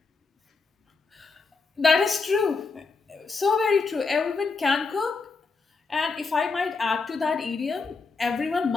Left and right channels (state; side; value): quieter; right; 4.4 dB